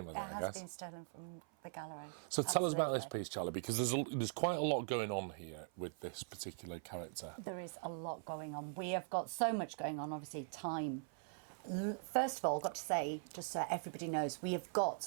It has been stolen from the gallery. So tell us about this piece, Charlie, because there's quite a lot going on here with this particular character. There is a lot going on. We have got so much going on. Obviously, time. First of all, I've got to say, just so everybody knows, we have got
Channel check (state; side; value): silent; left; 50 dB below the other